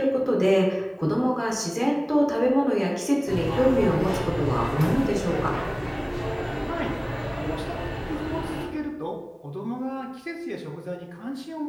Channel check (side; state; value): both; identical; correlation 1.00